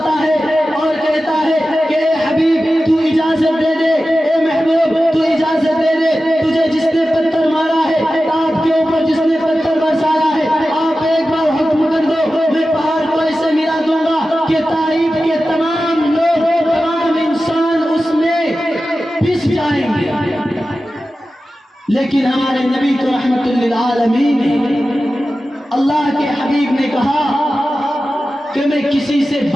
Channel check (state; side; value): normal; both; correlation 0.94